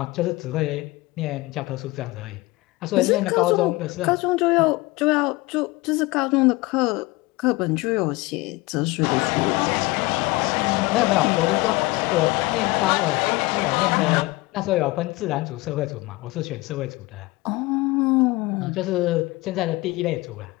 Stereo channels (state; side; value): quieter; right; 21.5 dB